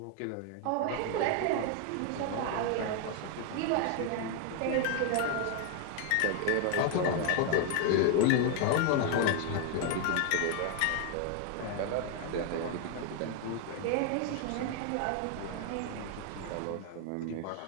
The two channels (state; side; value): different; both; correlation 0.00